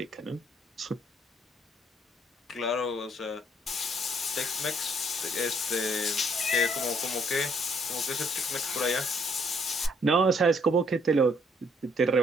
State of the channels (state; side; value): normal; both; correlation 0.66